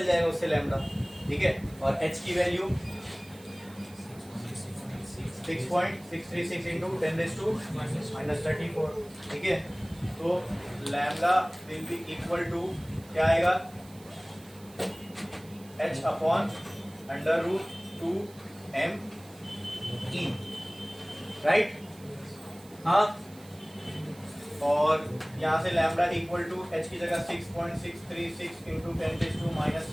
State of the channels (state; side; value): noise; right; hiss, 23 dB below the sound